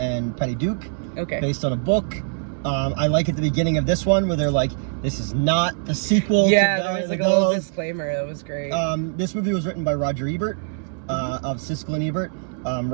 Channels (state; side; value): silent; left; 63 dB below the other